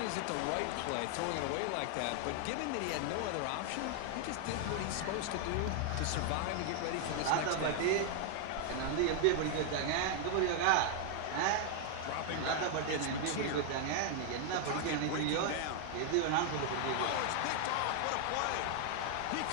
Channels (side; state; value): both; different; correlation 0.00